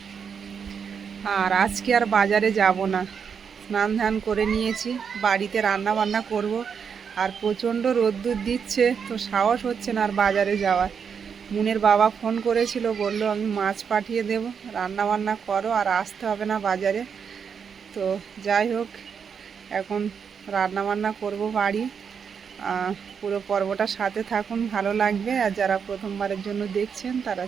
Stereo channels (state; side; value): quieter; left; 6.7 dB